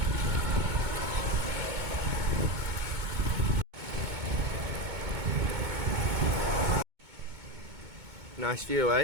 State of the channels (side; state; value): left; late; 2.2 ms